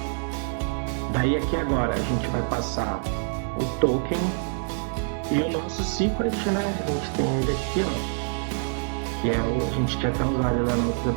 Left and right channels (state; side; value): silent; left; digital silence